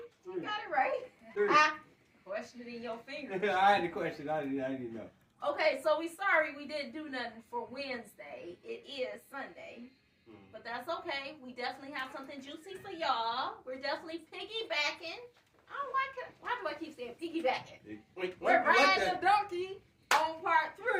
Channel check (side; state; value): both; identical; correlation 1.00